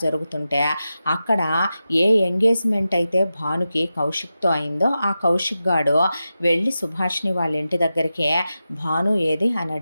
జరుగుతుంటే, అక్కడ ఏ ఎంగేజ్మెంట్ అయితే భానుకి కౌశిక్తో అయిందో ఆ కౌశిక్ గాడు వెళ్ళి సుభాష్ని వాళ్ళ ఇంటి దగ్గరికి భాను ఏది అని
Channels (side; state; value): both; inverted; correlation -0.92